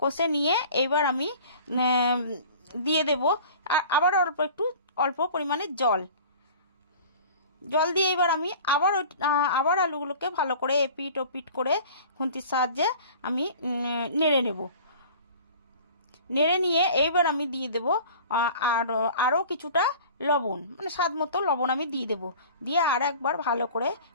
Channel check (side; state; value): both; inverted; correlation -0.43